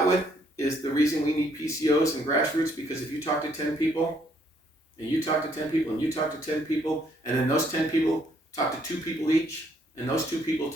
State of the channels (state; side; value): normal; both; correlation 0.68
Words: with is the reason we need PCOs and grassroots, because if you talk to 10 people, and you talk to 10 people, and you talk to 10 people, and then those 10 people talk to 2 people each, and those 2 people